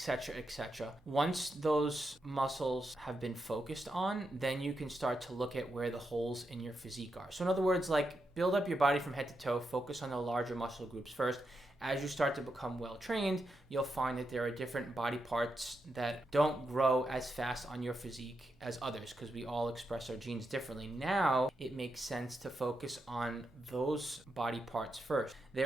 etc. Once those muscles have been focused on, then you can start to look at where the holes in your physique are. So in other words, like, build up your body from head to toe, focus on the larger muscle groups first. As you start to become well trained, you'll find that there are different body parts that don't grow as fast on your physique as others, because we all express our genes differently. Now, it makes sense to focus on those body parts first.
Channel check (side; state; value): both; normal; correlation 0.85